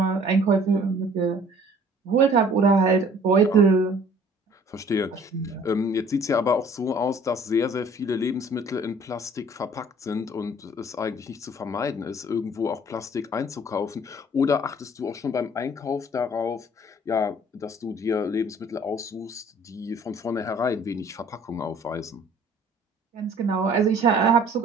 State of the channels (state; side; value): normal; both; correlation 0.54